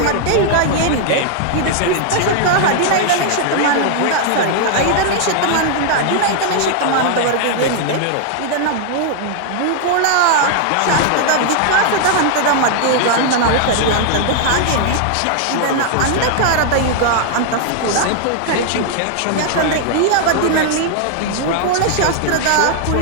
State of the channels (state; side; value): different; both; correlation 0.00